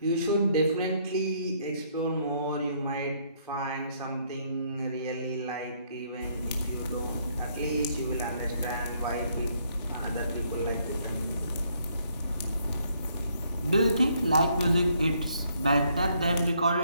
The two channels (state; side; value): inverted; both; correlation -0.69